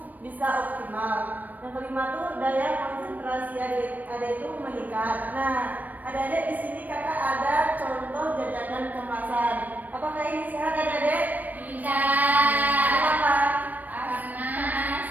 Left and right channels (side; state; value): left; late; 0.083 ms